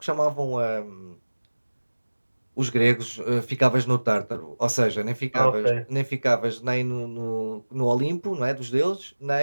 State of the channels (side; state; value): both; inverted; correlation -1.00